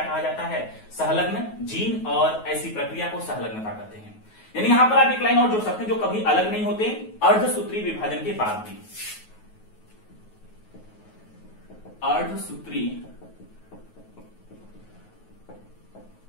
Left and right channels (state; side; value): late; right; 9.4 ms